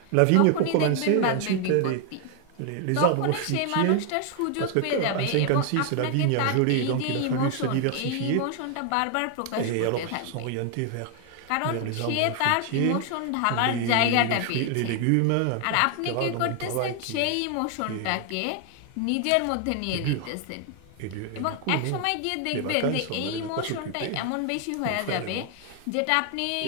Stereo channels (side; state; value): both; different; correlation 0.00